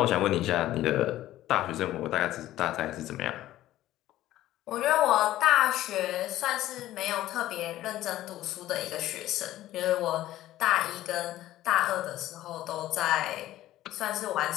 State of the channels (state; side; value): quieter; right; 14.5 dB